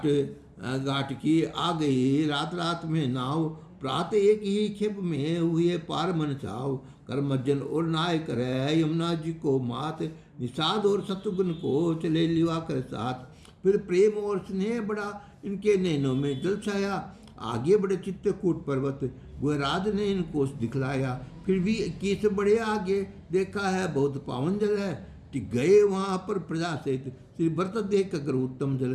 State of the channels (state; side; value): identical; both; correlation 1.00